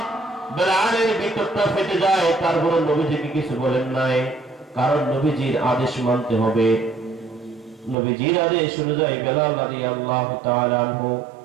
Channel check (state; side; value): drops out; left; at 8.0 s